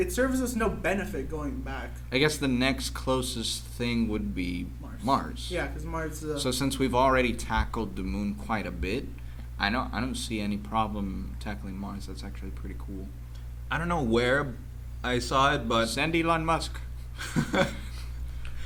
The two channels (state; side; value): identical; both; correlation 1.00